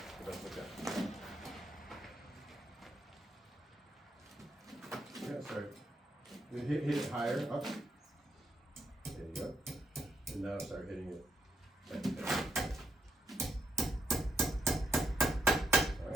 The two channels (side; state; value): both; normal; correlation 0.79